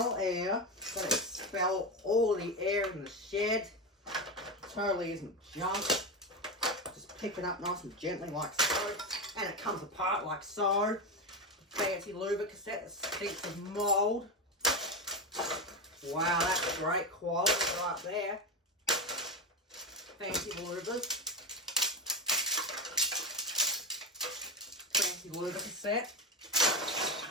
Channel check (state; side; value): normal; both; correlation 0.14